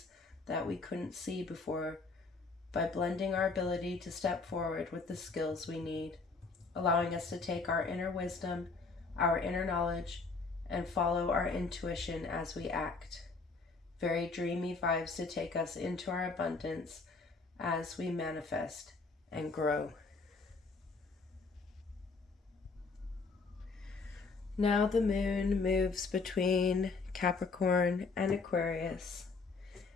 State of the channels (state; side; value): quieter; right; 4.2 dB